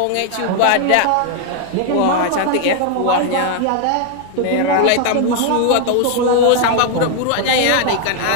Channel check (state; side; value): different; both; correlation 0.00